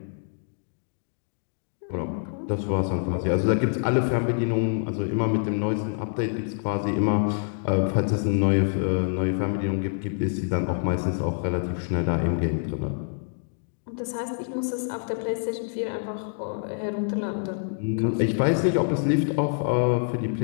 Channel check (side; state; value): right; silent; digital silence